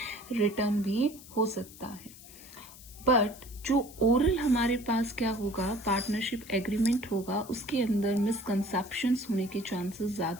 रिटर्न भी हो सकता है. बट जो ओरल हमारे पास क्या होगा, पार्टनरशिप एग्रीमेंट होगा, उसके अंदर मिसकंसेप्शंस होने के चांसेस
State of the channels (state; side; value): noise; left; hiss, 18 dB below the sound